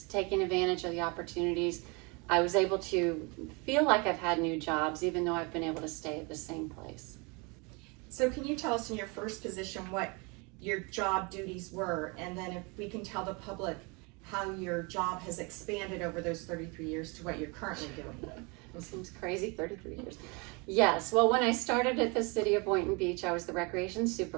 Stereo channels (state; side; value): quieter; left; 29.8 dB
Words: taking advantage of the opportunities. I was able to feel like I've had new jobs, even though I've been able to stay at the same place. So can you tell us in your first position what your job duties were, and then if we can tell the public how your job has expanded over those 33 years to what you're currently doing? It seems crazy, 33 years. Yes, well, when I started at the city of Boynton Beach, I was the recreation